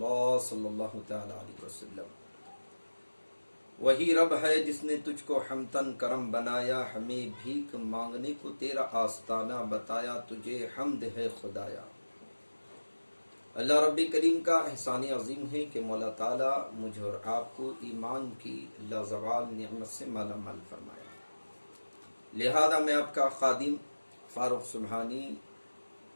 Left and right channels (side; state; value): both; inverted; correlation -1.00